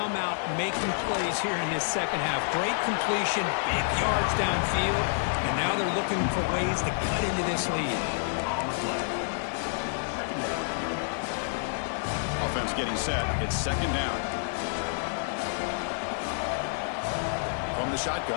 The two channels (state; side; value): silent; right; 59 dB below the other